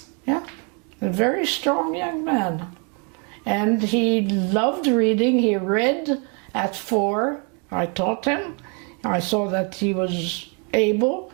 Yeah, a very strong young man. And he loved reading. He read at 4. I taught him. I saw that he was able.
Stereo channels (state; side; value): quieter; left; 36.2 dB